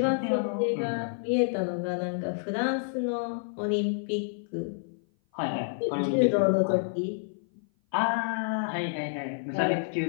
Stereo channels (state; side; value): silent; right; 56 dB below the other